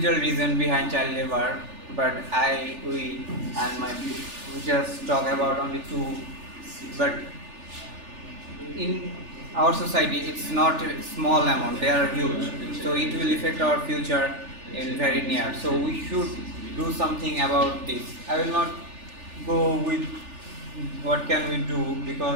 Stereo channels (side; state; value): left; late; 3.4 ms